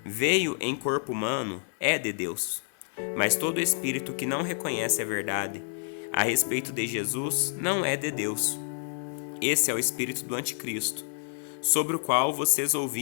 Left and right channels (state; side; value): silent; right; digital silence